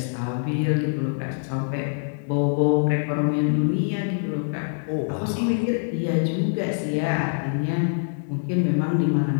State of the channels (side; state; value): right; silent; 62 dB below the other